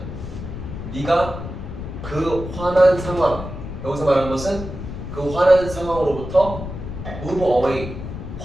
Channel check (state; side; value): noise; left; rumble, 8 dB below the sound